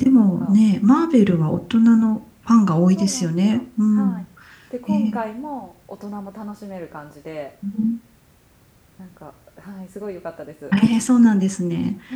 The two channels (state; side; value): identical; both; correlation 1.00